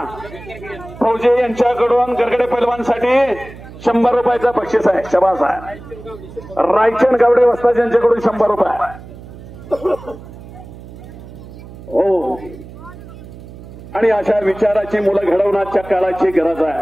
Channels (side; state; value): right; noise; hum, 16 dB below the sound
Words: फौजे यांच्याकडून गरगडे पैलवानसाठी 100 रुपयाचं बक्षीस आहे. शबास आहे. रायचंद गावडे वस्ताद यांच्याकडून 100 रुपये. हो, आणि अशा विचाराची मुलं घडवण्याच्या काळाची गरज